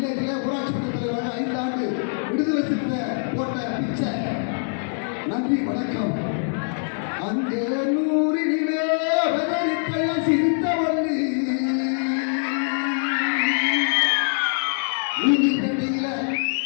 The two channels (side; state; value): right; silent; 63 dB below the other